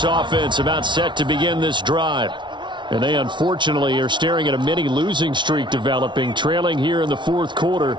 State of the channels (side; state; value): left; late; 0.23 ms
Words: offense about set to begin this drive. And they unfortunately are staring at a mini losing streak developing, trailing here in the fourth quarter.